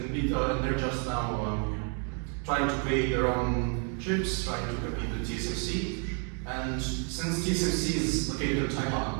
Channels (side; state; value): left; quieter; 39.6 dB